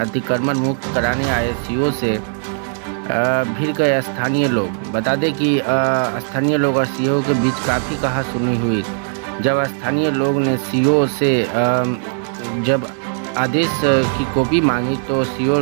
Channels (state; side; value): silent; left; 67 dB below the other